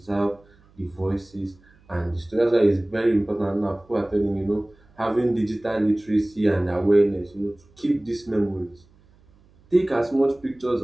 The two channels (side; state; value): right; noise; hum, 30 dB below the sound